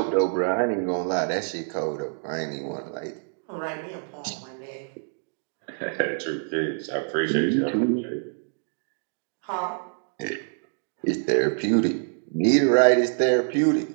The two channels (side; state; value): left; silent; digital silence